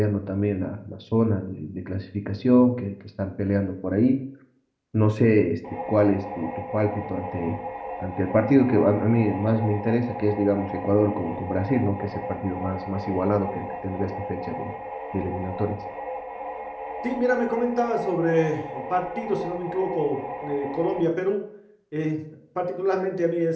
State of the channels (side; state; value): both; identical; correlation 1.00